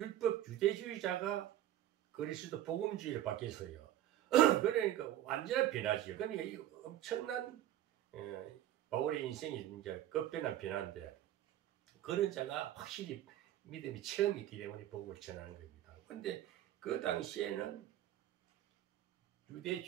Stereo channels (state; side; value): quieter; left; 12.4 dB